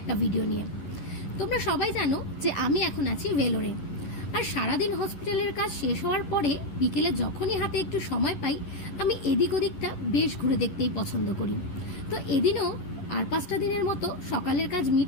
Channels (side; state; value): right; late; 11 ms